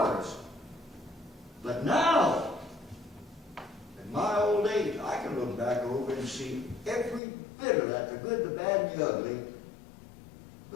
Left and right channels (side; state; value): right; drops out; at 7.2 s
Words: But now, in my old age, I can look back over and see every bit of that, the good, the bad, and the ugly.